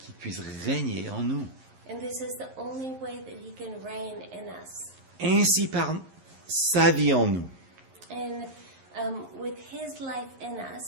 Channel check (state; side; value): late; left; 11 ms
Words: puisse régner en nous. And this is the only way that he can reign in us. Ainsi par sa vie en nous, And with his life in